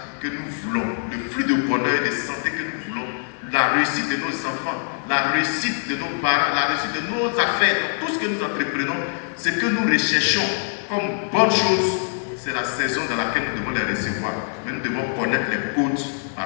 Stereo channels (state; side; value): silent; right; 63 dB below the other